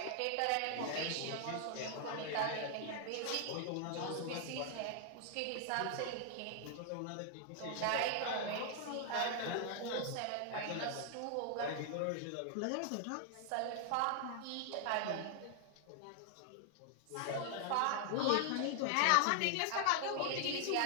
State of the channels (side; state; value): both; different; correlation 0.00